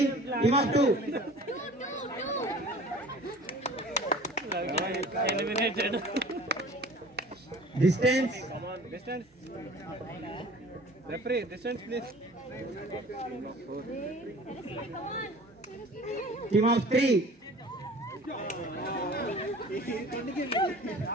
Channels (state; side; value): normal; both; correlation 0.45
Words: Team of 2. Eliminated. Distance. Come on, distance. Referee, distance please. Team of 3.